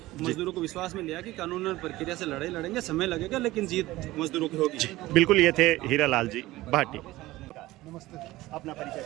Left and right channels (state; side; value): quieter; left; 17.8 dB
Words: मजदूरों को विश्वास में लिया कि कानूनन प्रक्रिया से लड़ाई लड़ेंगे, समय लगेगा लेकिन जीत मजदूरों की होगी। बिल्कुल। ये थे हीरालाल जी भाटी। नमस्ते। अपना परिचय